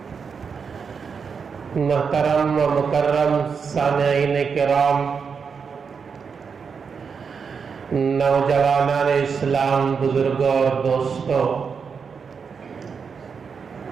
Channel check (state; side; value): quieter; left; 5.9 dB